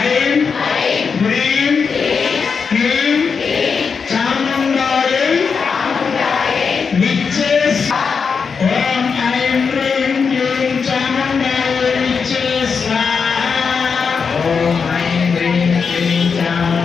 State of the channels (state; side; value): quieter; right; 5.6 dB